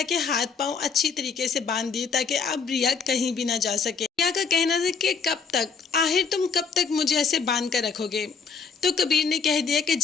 के हाथ पांव अच्छी तरीके से बांध दिए ताकि अब रिया कहीं भी ना जा सके। रिया का कहना था कि कब तक, आखिर तुम कब तक मुझे ऐसे बांध कर रखोगे? तो कबीर ने कह दिया कि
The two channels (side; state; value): right; quieter; 5.5 dB